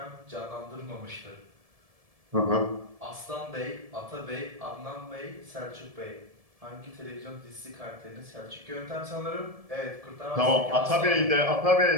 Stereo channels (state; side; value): late; left; 1.7 ms